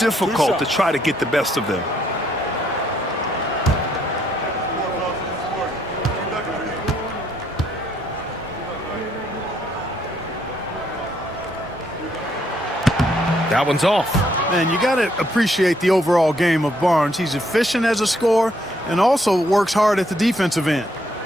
to try to get the best of them. That one's off. Man, you got to appreciate the overall game of Barnes. He's efficient as a scorer and also works hard at the defensive end.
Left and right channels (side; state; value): both; normal; correlation 0.71